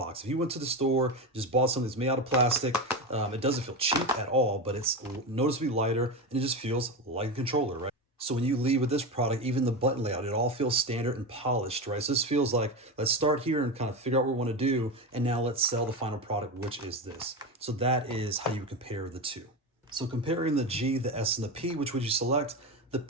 If you went to the store, just bought something that's made out of plastic, it doesn't feel cheap at all, but it's noticeably lighter, and it just feels like a controller, right? So when you leave with this product, even the button layout, it all feels standard and polished, right? So this feels like, let's start here and kind of figure out what we want to do, and now let's sell the final product, which is this. So that is how you compare the two. So comparing the G, the S, and the P, which would you select? The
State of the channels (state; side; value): normal; both; correlation 0.19